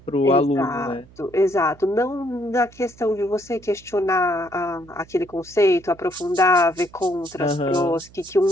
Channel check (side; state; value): right; noise; hum, 24 dB below the sound